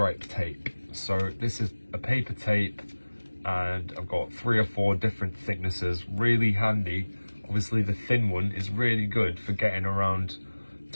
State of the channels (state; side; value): inverted; both; correlation -1.00